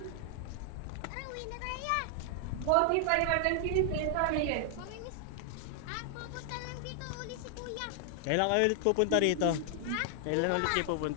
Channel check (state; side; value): different; both; correlation 0.00